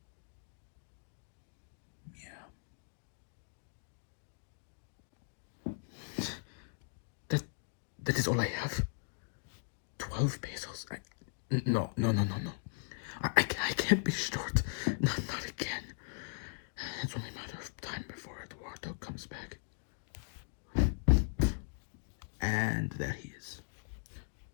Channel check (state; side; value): silent; right; digital silence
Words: Yeah. That is all I have. 12 pesos. No. I can't be short. Not again. It's only a matter of time before Eduardo comes back. And there he is.